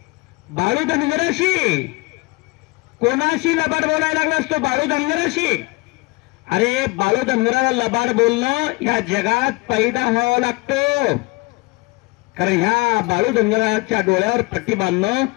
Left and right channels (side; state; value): right; quieter; 24.6 dB